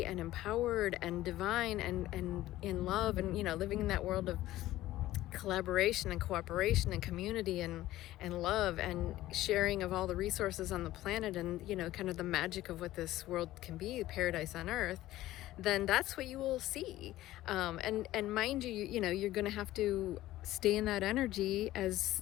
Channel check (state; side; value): quieter; right; 15.4 dB